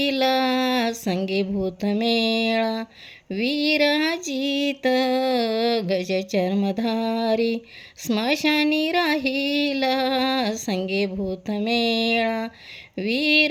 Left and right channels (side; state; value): both; identical; correlation 1.00